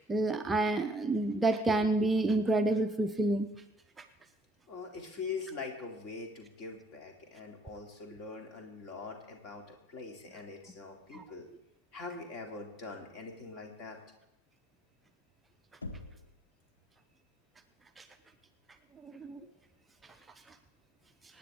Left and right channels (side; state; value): both; normal; correlation 0.66